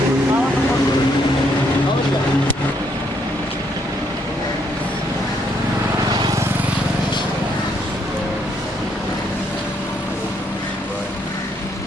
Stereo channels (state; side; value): normal; both; correlation 0.72